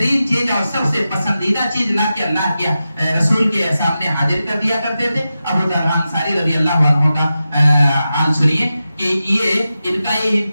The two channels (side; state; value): both; inverted; correlation -0.92